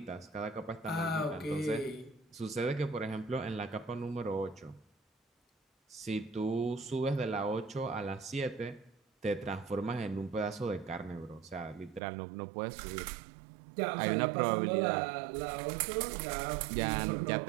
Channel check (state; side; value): drops out; left; at 12.0 s